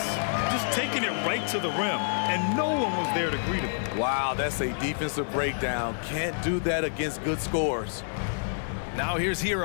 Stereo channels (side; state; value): right; silent; digital silence